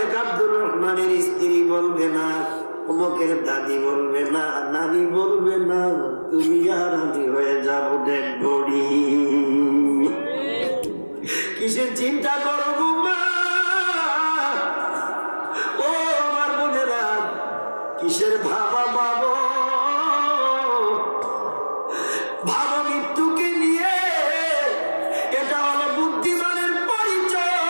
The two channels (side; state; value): both; inverted; correlation -1.00